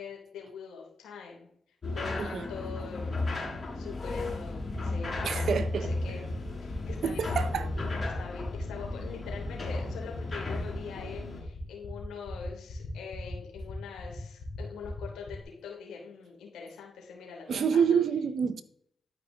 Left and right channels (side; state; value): both; normal; correlation 0.79